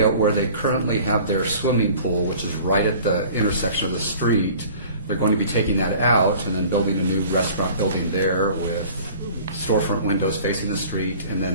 where they currently have their swimming pool, which is right at the intersection of the street. They're going to be taking that out and then building a new restaurant building there with storefront windows facing the street and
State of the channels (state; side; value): inverted; both; correlation -0.46